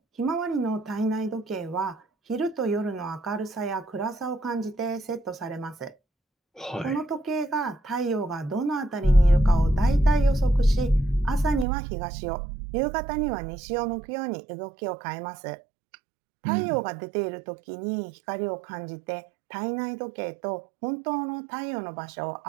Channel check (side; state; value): left; drops out; at 11.7 s